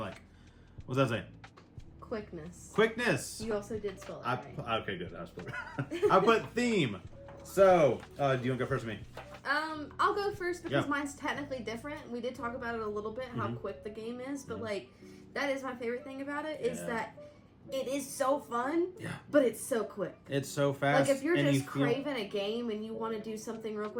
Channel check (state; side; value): identical; both; correlation 1.00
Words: What's that say? Quickness. Quickness. You also did spell it right. Okay, good. I put theme. So, do you want to go first with me? I'll go first because Yeah. mine's technically different. We did talk about it a little bit, how quick the game is, but like, that is my favorite thing about it, is that it is so fun, but it's so quick. It's so fast. Like, if you're and just you feel- craving a game and you want to do something real